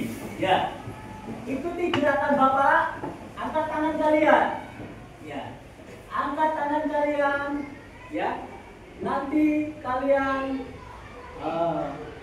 Ya, ikuti gerakan Bapak. Angkat tangan kalian. Ya, angkat tangan kalian. Ya, nanti kalian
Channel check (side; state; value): both; identical; correlation 1.00